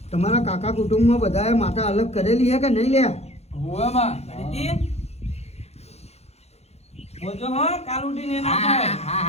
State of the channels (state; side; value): late; right; 0.31 ms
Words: તમારા કાકા કુટુંબમાં બધાએ માતા અલગ કરેલી છે કે નહીં લે? હોવે માં કરીતી બોલજો હા કાલ ઉઠીને એના હા થાય. હા